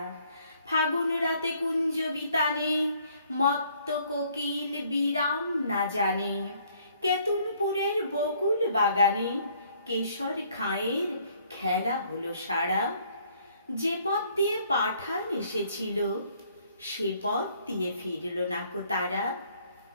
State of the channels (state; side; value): inverted; both; correlation -0.63